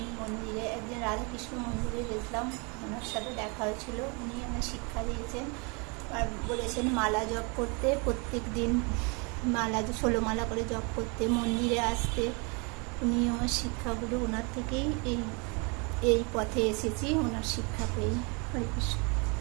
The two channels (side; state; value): left; quieter; 32.1 dB